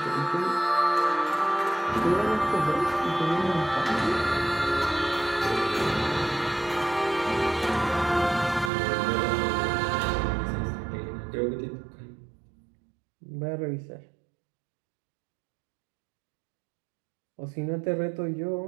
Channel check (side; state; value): left; drops out; at 8.7 s